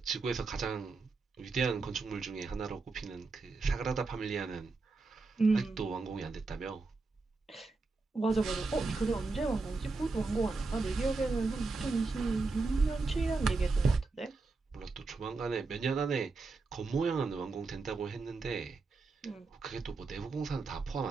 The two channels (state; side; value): quieter; left; 3.9 dB